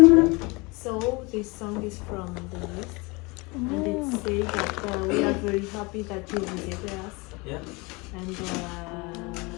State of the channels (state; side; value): quieter; right; 26.5 dB